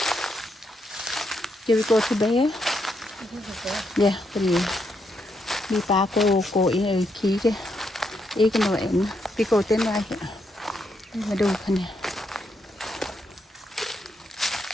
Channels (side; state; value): both; normal; correlation 0.79